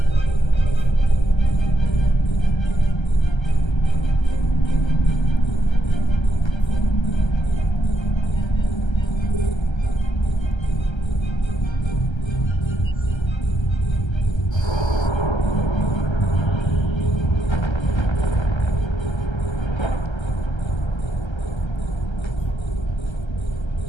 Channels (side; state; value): right; late; 1.3 ms